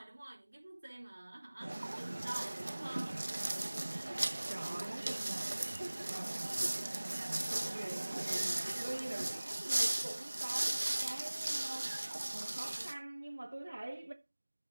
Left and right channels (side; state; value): both; inverted; correlation -1.00